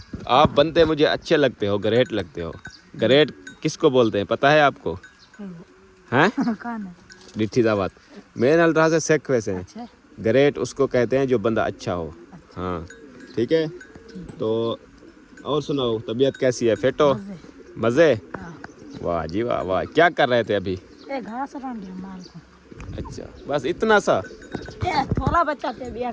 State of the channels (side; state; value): both; identical; correlation 1.00